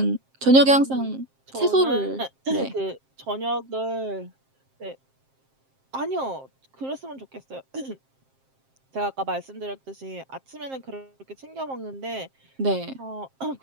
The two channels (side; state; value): left; late; 7.5 ms